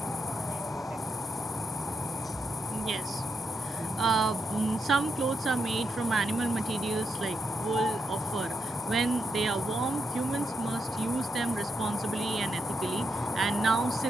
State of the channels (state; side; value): normal; both; correlation 0.82